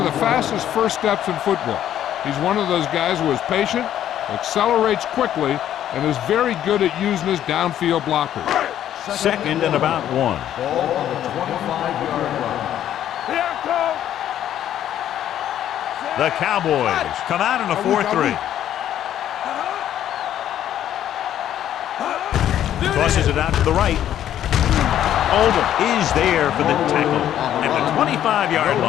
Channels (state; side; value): quieter; right; 11.1 dB